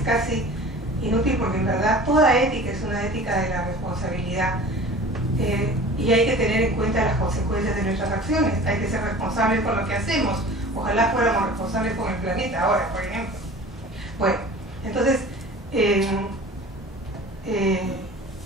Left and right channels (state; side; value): normal; both; correlation 0.41